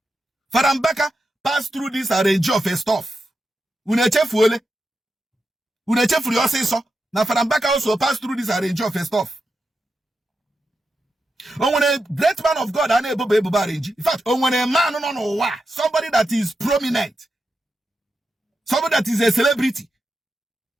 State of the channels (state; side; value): normal; both; correlation 0.88